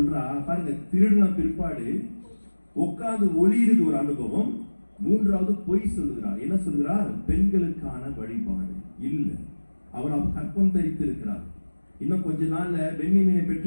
பாருங்க, திருடின பிற்பாடு உட்கார்ந்து ஒளியிறது ஒரு அனுபவம். மூன்றாவது பொய் சொல்லுகிறார். என்ன சொல்கிறார்? பெண்களுக்கான வழிபாடு இல்ல, அவர் கற்பம் தரித்து இருக்கிறார். இன்னும் கொஞ்ச நாள்ல பென்யமீனை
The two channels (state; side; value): inverted; both; correlation -1.00